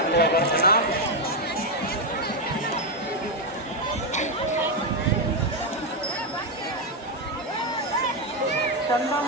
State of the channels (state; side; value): normal; both; correlation 0.04